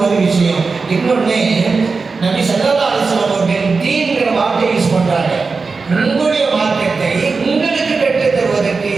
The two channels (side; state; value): left; quieter; 4.4 dB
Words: ஒரு விஷயம். இன்னொன்னு, நபி ஸல்லல்லாஹு அலைஹி வஸல்லம் அவர்கள் தீன்ங்கிற வார்த்தை யூஸ் பண்றாங்க. உங்களுடைய மார்க்கத்தை உங்களுக்கு கற்றுத் தருவதற்கு,